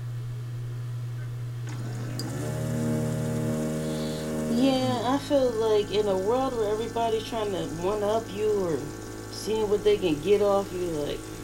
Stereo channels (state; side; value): identical; both; correlation 1.00